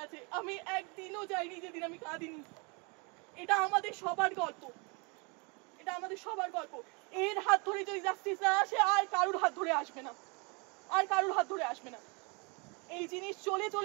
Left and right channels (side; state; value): left; quieter; 31.7 dB